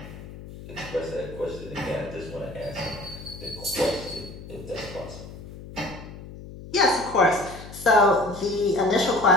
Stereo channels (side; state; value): left; noise; hum, 14 dB below the sound